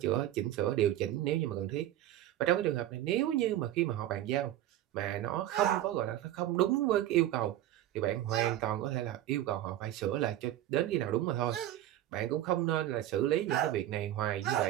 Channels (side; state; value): left; quieter; 13.2 dB